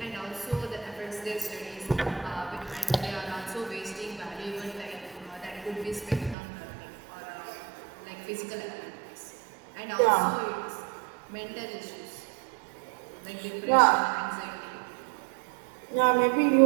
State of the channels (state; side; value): drops out; left; at 6.4 s